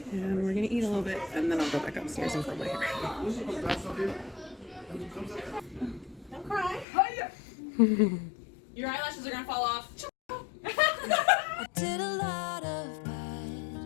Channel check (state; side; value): drops out; right; at 6.9 s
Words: and we're gonna eat a little bit, and then I'll go back upstairs and curl my hair. Don't cry. Your eyelashes are gonna fall off. I did a lot of